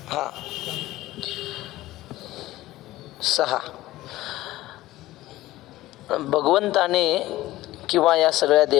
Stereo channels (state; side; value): quieter; right; 16.6 dB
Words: हा 6. भगवंताने किंवा या सगळ्या